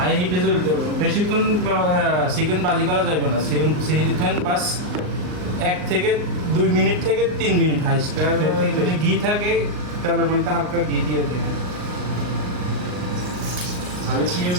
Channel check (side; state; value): left; late; 39 ms